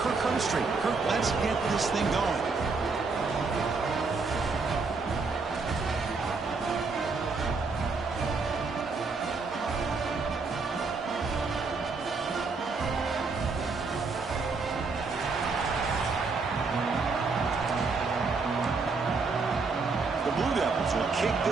Kirk Herbstreit. Kirk, let's get this thing going. Kick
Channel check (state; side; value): quieter; left; 4.3 dB